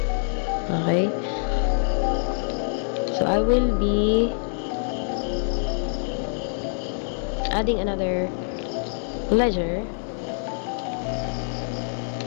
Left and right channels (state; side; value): silent; right; digital silence